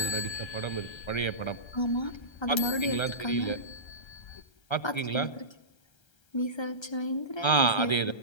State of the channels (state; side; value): late; right; 1.3 ms